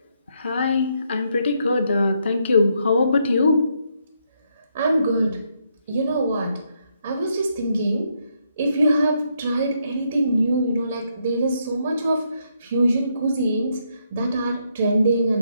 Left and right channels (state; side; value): inverted; both; correlation -0.76